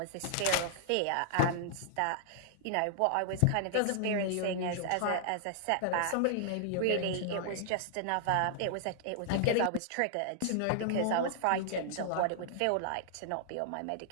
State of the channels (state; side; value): different; both; correlation -0.01